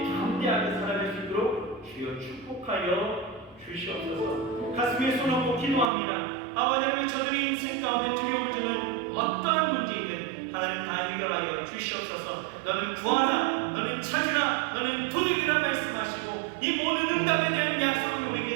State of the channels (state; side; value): drops out; left; at 5.9 s